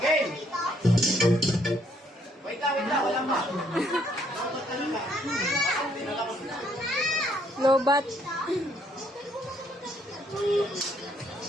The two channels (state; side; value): normal; both; correlation 0.68